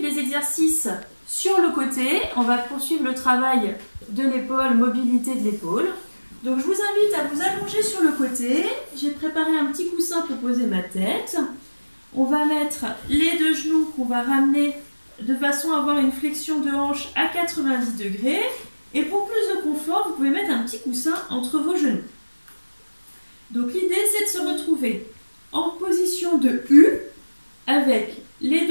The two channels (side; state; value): both; inverted; correlation -1.00